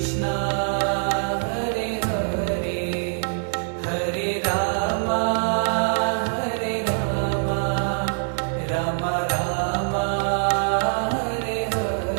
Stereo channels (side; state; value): left; silent; digital silence